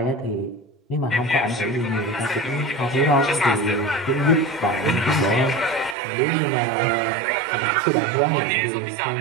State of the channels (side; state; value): left; drops out; at 6.0 s